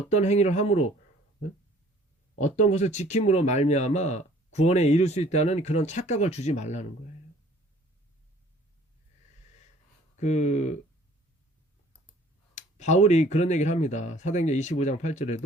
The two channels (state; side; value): normal; both; correlation 0.54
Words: 행위를 함으로, 어떤 것을 지킴으로 말미암아 구원에 이룰 수 있다는 그런 착각을 주지 말라는 거예요. 바울이 그런 얘기를 합니다. 사도행전 25장